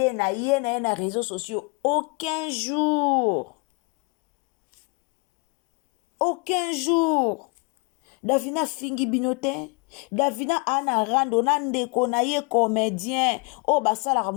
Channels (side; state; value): right; quieter; 31.0 dB